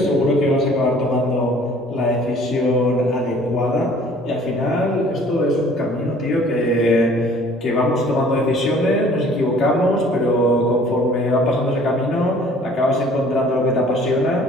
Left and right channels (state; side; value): normal; both; correlation 0.53